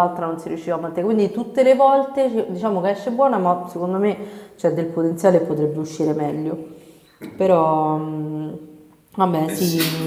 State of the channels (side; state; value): both; identical; correlation 1.00